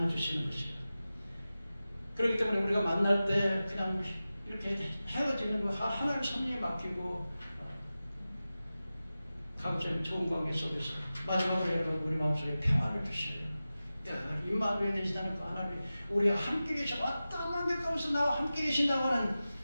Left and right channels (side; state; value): both; inverted; correlation -0.95